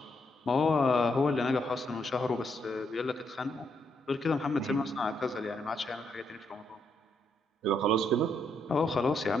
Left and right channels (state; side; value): normal; both; correlation 0.76